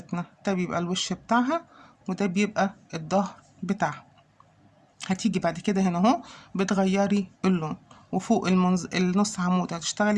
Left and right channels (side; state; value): both; identical; correlation 1.00